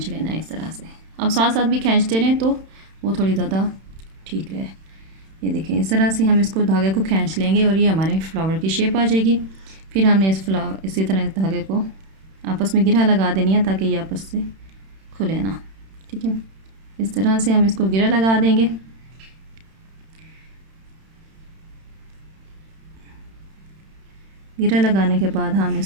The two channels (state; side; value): late; left; 31 ms